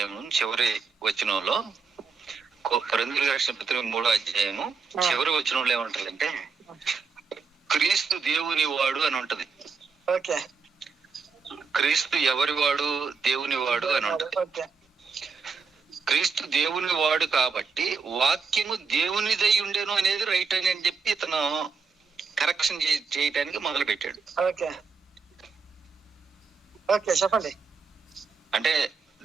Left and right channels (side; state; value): left; quieter; 5.1 dB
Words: చివరి వచనంలో, కొరింథీయులకు రాసిన పత్రిక 3వ అధ్యాయము చివరి వచనంలో ఏమంటారంటే, క్రీస్తు దేవుని వాడు అని ఉంటది. క్రీస్తు ఎవరి వాడు? దేవుని వాడు అని ఉంటది. క్రీస్తు దేవుని వాడు కాబట్టి వాక్యము దేవునిదై ఉండేను అనేది రైట్ అని చెప్పి ఇతను కరెక్షన్ చేయటానికి మొదలు పెట్టాడు. చెప్పండి. అంటే